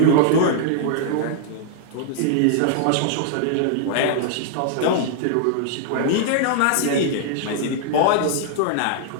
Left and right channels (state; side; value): different; both; correlation -0.01